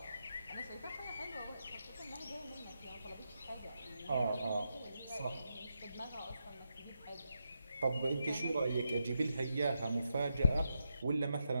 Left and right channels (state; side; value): inverted; both; correlation -0.85